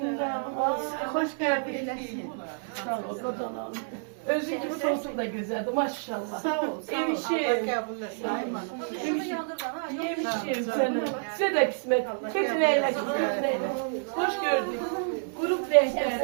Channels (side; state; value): left; silent; digital silence